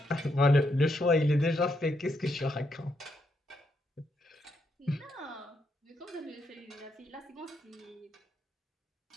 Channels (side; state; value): both; normal; correlation 0.79